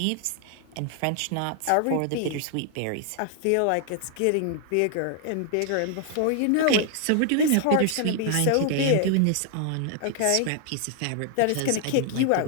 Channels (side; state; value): both; different; correlation 0.00